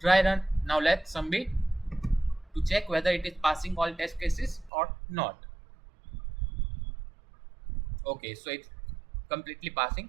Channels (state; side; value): drops out; left; at 4.7 s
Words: dry run. Now let's submit to check whether it is passing all test cases or not. Okay, so it's completely passing